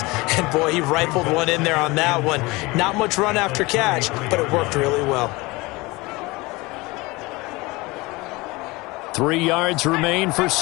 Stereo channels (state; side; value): quieter; right; 22.9 dB